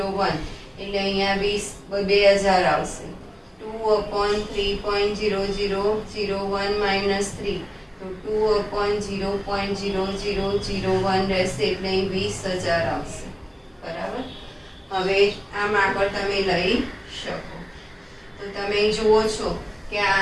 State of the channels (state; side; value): identical; both; correlation 1.00